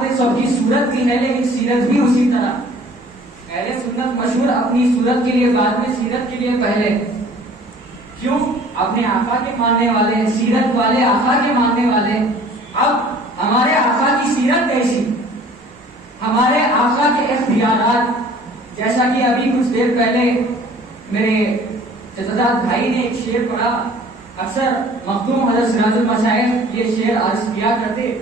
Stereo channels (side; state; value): both; normal; correlation 0.51